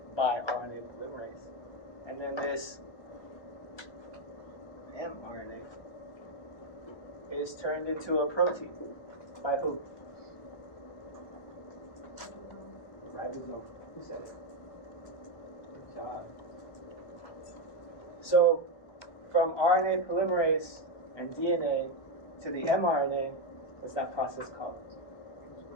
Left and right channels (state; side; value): late; right; 1.2 ms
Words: by RNA polymerase. And then this mRNA is turned into a protein. By who? Ribosome. Who said it? Good job. So, from RNA polymerase and DNA to the mRNA, what's that process called?